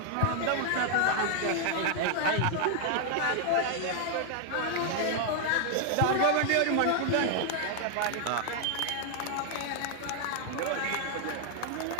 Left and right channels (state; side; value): different; both; correlation 0.00